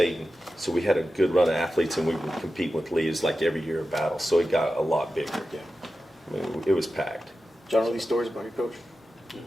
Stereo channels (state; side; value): normal; both; correlation 0.92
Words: And so we had a good run of athletes, and we would compete with Lee's like every year of battle. So it got a lot bigger. Yeah. I mean, it was packed. John, know these stories about your coach?